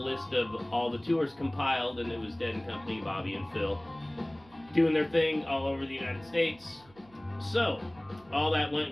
list of all the tours compiled, and it was Dead & Company, Bobby and Phil, doing their thing all over the United States. So, all that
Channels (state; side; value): noise; right; hum, 27 dB below the sound